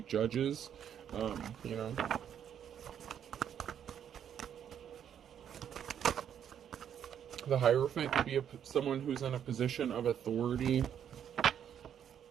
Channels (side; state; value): left; quieter; 9.1 dB